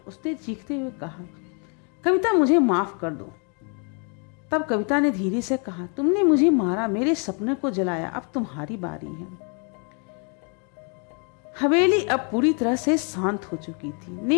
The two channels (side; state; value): right; quieter; 38.1 dB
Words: उसने चीखते हुए कहा, कविता मुझे माफ कर दो। तब कविता ने धीरे से कहा, तुमने मुझे मारा, मेरे सपने को जलाया, अब तुम्हारी बारी है। हवेली अब पूरी तरह से शांत हो चुकी थी।